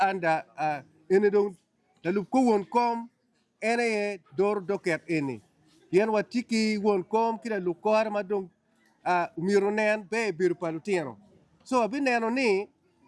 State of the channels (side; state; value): both; identical; correlation 1.00